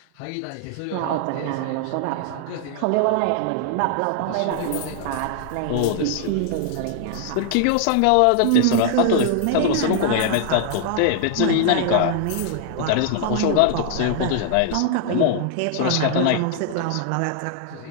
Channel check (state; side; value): different; both; correlation 0.00